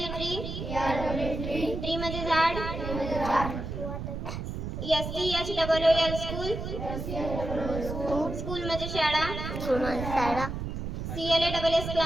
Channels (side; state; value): right; noise; rumble, 5 dB below the sound